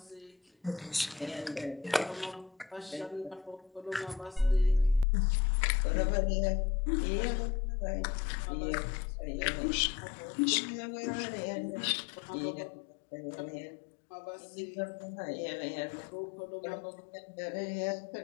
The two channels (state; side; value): drops out; right; at 5.1 s